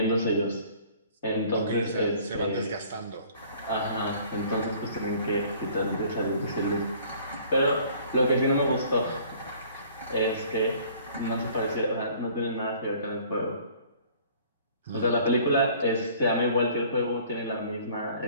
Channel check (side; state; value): both; inverted; correlation -0.53